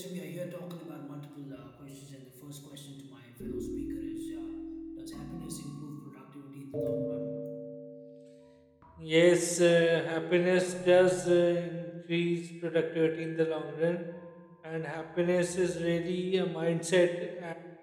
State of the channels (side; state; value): both; identical; correlation 1.00